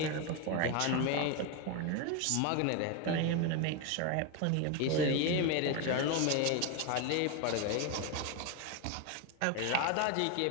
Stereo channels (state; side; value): different; both; correlation 0.02